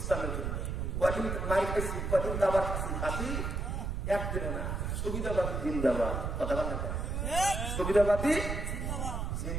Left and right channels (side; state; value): right; noise; rumble, 2 dB below the sound